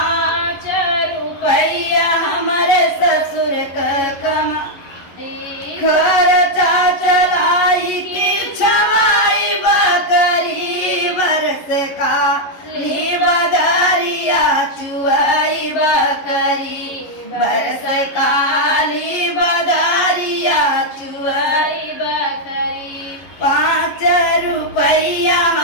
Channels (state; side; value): late; right; 11 ms